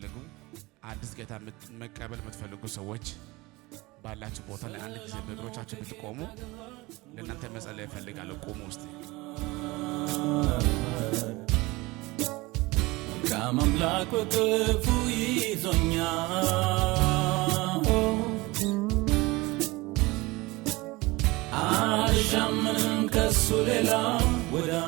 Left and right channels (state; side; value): quieter; left; 22.2 dB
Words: አዲስ ጌታ መቀበል የምትፈልጉ ሰዎች ባላችሁ ቦታ ላይ አንድ ጊዜ በእግሮቻችሁ ብትቆሙ ለእናንተ መጸለይ እፈልጋለሁ። ቆሙ ውስጥ ከአምላክ ወቅፉ ይዞኛል አልሻምንም ከሱ ሌላ